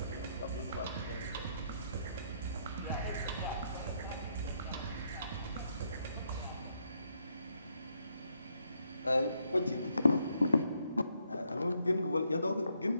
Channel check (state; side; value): inverted; both; correlation -0.75